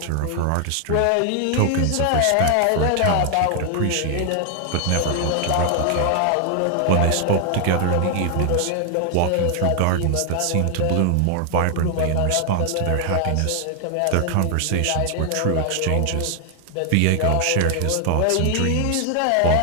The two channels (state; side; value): different; both; correlation 0.00